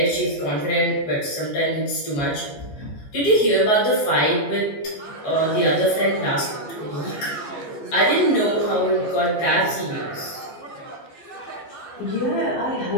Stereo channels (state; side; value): late; right; 14 ms